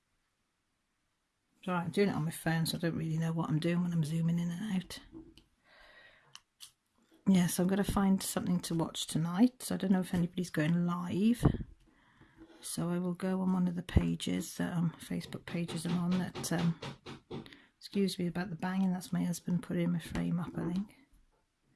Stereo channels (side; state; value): both; identical; correlation 1.00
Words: It's alright, I'm doing it on my phone, so I don't really know what I'm doing when I'm zooming in and out. Yeah, so I'm going to find something to watch tonight. So I don't know if anybody's going live. So I will go on one of the pages, Facebook pages I'm on that... excuse me about the banging, that's my husband putting my frame up, I think.